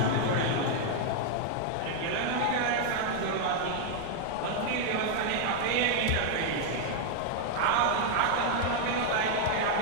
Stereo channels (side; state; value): both; different; correlation 0.00